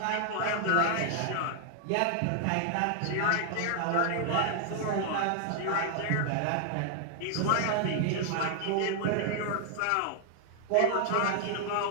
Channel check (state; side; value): different; both; correlation 0.00